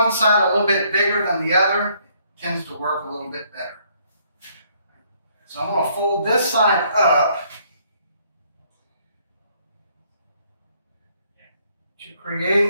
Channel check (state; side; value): inverted; both; correlation -0.67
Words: side a little bit bigger than the other, it tends to work a little bit better. So I'm going to fold this side up to